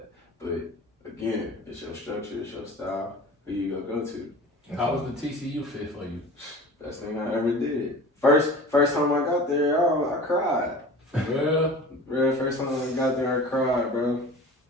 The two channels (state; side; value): normal; both; correlation 0.39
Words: But again, it's your structure, it's your style, who you go to. How was the TCU fit for you? Best thing I ever did. First time I got there, I cried. For real? First time I got there, I cried, bro.